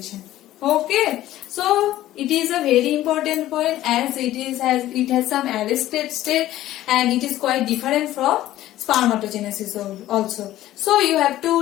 Okay, so it is a very important point as it has some arrested state and it is quite different from spermatogenesis also. So you have to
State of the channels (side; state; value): right; quieter; 14.3 dB